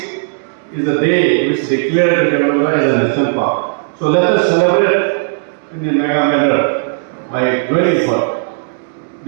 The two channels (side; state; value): left; silent; digital silence